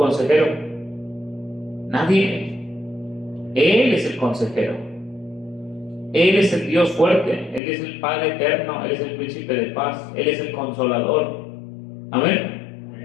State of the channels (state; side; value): drops out; right; at 7.6 s